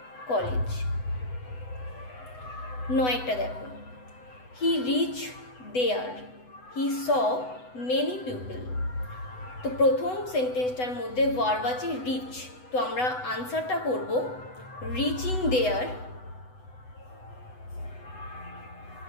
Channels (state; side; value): late; right; 8.0 ms